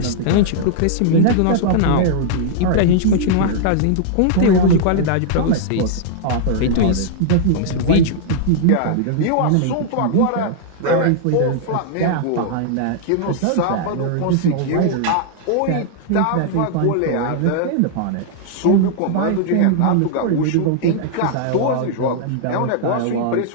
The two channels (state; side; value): different; both; correlation -0.01